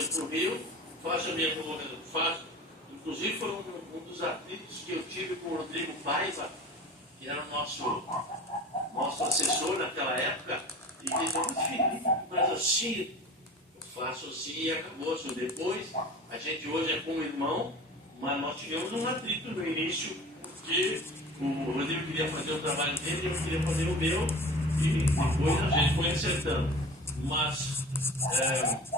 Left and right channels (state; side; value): normal; both; correlation 0.38